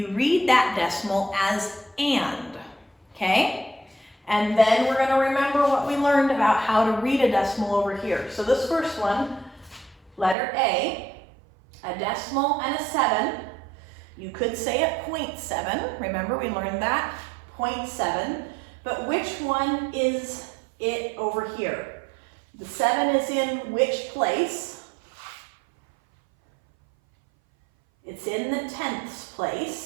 read that decimal as and, okay? And then we're going to remember what we learned about how to read a decimal over here. So this first one, letter A, a decimal and a 7. You could say it 0.7. Remember, we learned that, 0.7. But which one is it over here? The 7 is in which place? It's in the tenths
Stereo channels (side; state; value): left; drops out; at 10.4 s